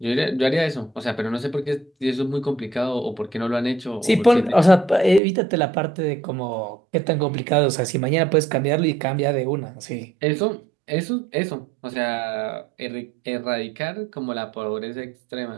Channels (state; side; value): drops out; left; at 5.2 s